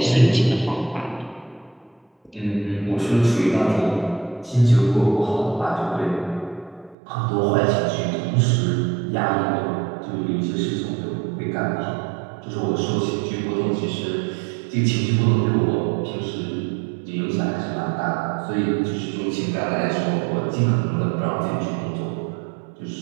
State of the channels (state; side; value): drops out; left; at 7.0 s